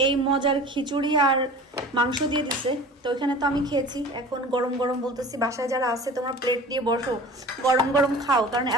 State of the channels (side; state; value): both; normal; correlation 0.40